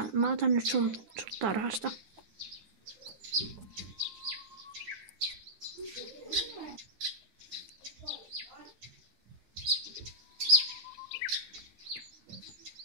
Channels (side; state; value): left; late; 10 ms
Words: mä otan nyt sun tarhasta.